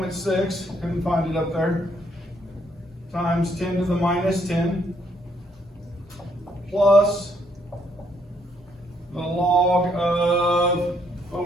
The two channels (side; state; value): both; normal; correlation 0.71